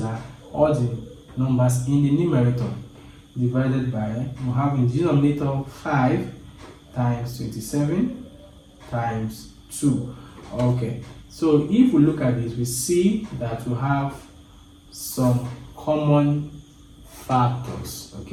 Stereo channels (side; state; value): both; identical; correlation 1.00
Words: are all the numbers in the numerator, divided by, we have in the denominator 5 times 27 times 2. Okay, so if we look at this, we see that we have some common factors.